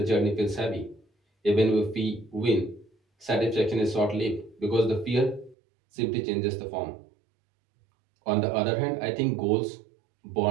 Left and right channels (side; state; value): left; drops out; at 5.6 s